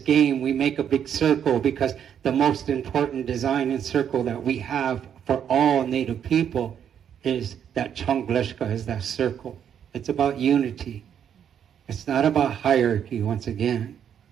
We make a big circle, because the most important design and circle that we have for all Native people is that Chongleshka, is that circle. It's about unity. It's not about hierarchy, once again.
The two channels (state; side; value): quieter; left; 8.8 dB